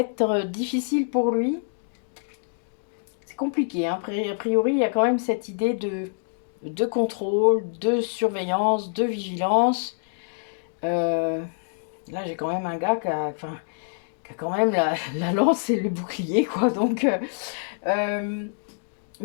difficile pour lui. C'est compliqué. Hein. A priori, il y a quand même cette idée de contrôle, de surveillance, de vigilance. Là, j'ai quand même un gars qui a quand même la lance et le bouclier. Quoi. Donc...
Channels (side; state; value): right; silent; digital silence